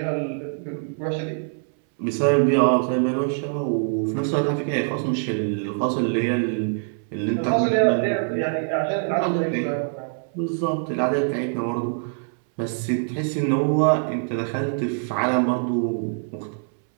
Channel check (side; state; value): left; silent; 63 dB below the other